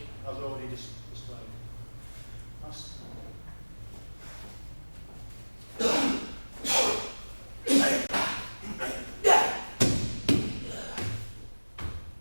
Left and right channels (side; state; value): both; inverted; correlation -1.00